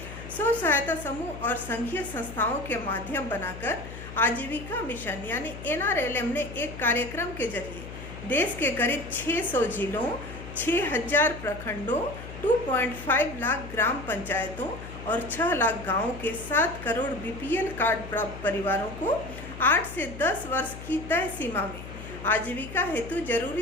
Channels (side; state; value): left; noise; hum, 12 dB below the sound